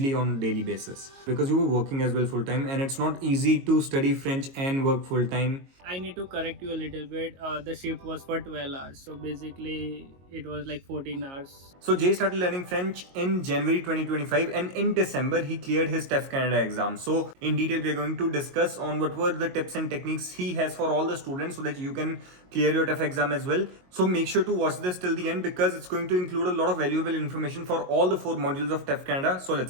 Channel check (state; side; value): late; left; 22 ms